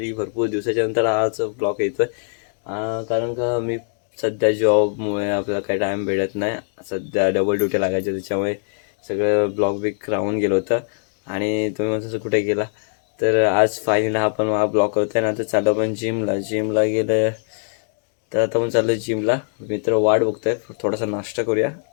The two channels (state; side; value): silent; right; 64 dB below the other